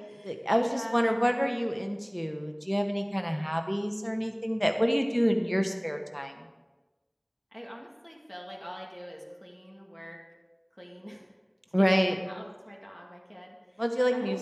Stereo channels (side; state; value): both; identical; correlation 1.00